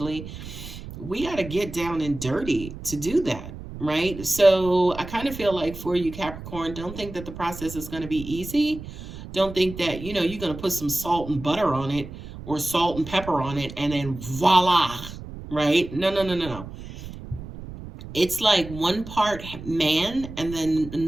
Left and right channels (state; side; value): noise; right; rumble, 12 dB below the sound